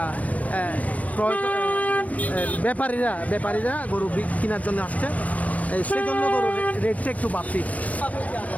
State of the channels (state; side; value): late; right; 0.071 ms